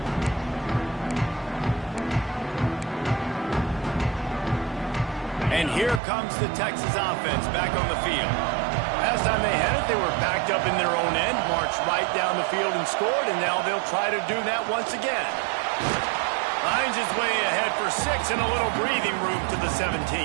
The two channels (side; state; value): left; drops out; at 6.0 s